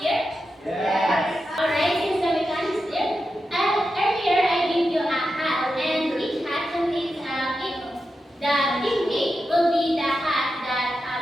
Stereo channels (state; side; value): normal; both; correlation 0.89